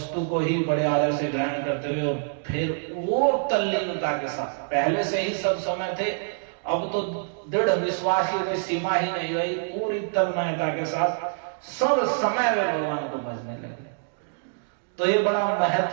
को ही बड़े आदर से ग्रहण करते हुए और फिर वो तल्लीनता के साथ, पहले से ही सब समय थे, अब तो दृढ़ विश्वास की सीमा ही नहीं रही, पूरी तन्मयता के साथ सब समय वे भगवान को भजने लगे। तो ये बड़ा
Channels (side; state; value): left; silent; digital silence